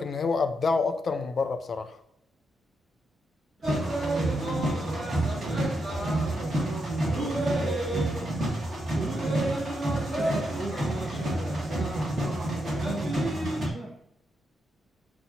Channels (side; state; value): both; normal; correlation 0.82